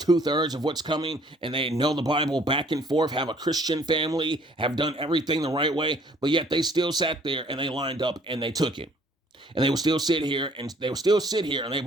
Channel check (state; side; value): normal; both; correlation 0.59